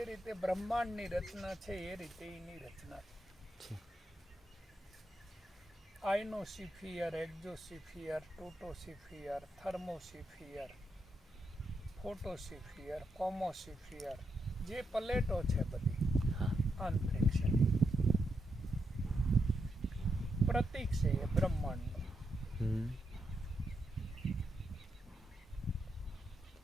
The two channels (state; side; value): normal; both; correlation 0.83